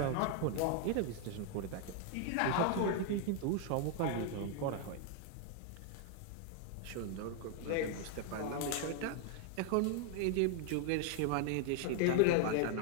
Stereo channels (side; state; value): both; different; correlation 0.00